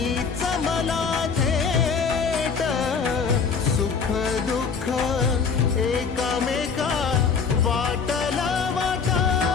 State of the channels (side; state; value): right; quieter; 5.6 dB